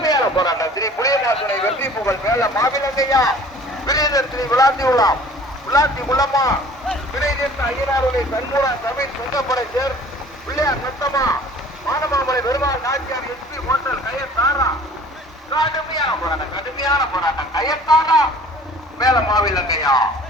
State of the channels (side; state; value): both; normal; correlation 0.49